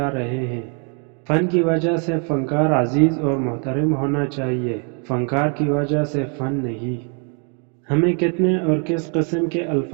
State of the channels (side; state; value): left; quieter; 36.5 dB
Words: رہے ہیں۔ فن کی وجہ سے فنکار عزیز اور محترم ہونا چاہیے، فنکار کی وجہ سے فن نہیں۔ ہمیں کتنے اور کس قسم کے